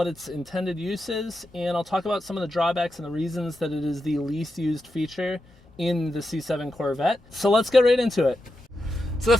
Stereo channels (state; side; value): normal; both; correlation 0.88